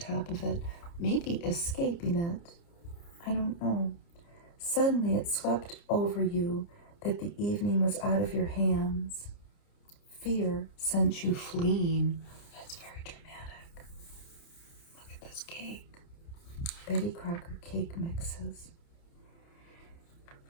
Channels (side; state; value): right; late; 29 ms